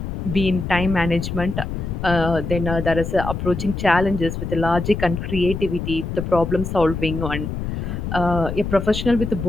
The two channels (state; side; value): noise; left; rumble, 5 dB below the sound